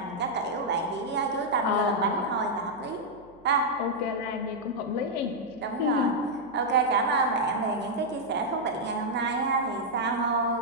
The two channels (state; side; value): noise; right; hum, 28 dB below the sound